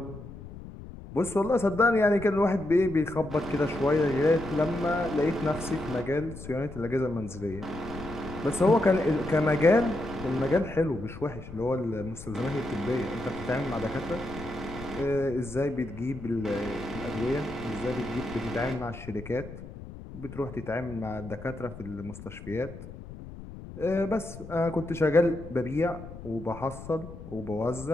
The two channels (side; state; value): left; noise; rumble, 13 dB below the sound